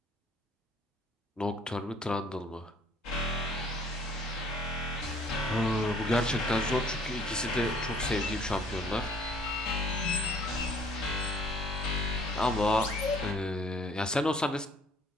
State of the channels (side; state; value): both; normal; correlation 0.58